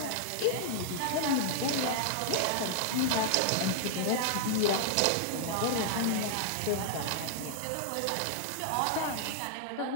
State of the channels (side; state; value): both; different; correlation -0.01